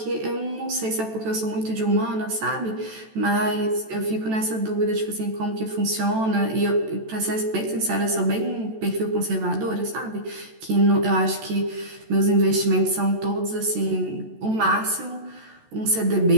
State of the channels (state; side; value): late; left; 14 ms